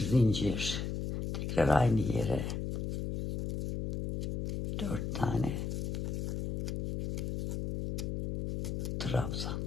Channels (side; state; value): left; noise; hum, 2 dB below the sound